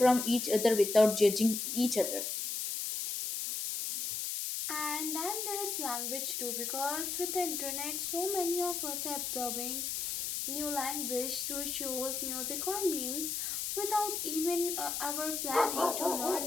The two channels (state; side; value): noise; left; hiss, 2 dB below the sound